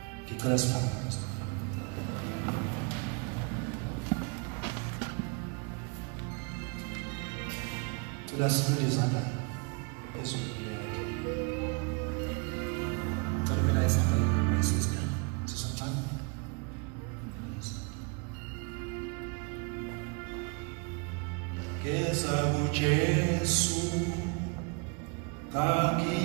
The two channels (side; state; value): left; quieter; 32.3 dB